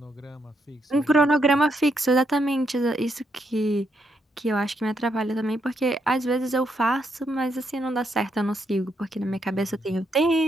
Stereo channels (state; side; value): normal; both; correlation 0.78